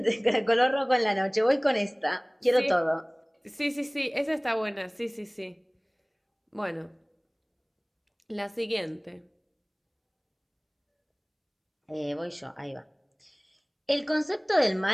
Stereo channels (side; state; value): both; identical; correlation 1.00